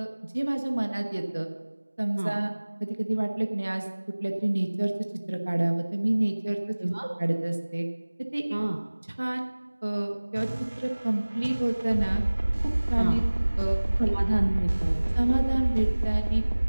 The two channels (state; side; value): inverted; both; correlation -1.00